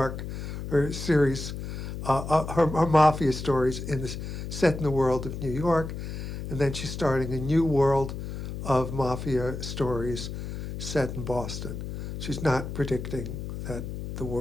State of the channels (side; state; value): left; noise; hum, 7 dB below the sound